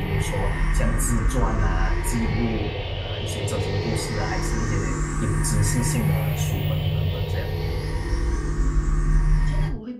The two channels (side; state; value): both; identical; correlation 1.00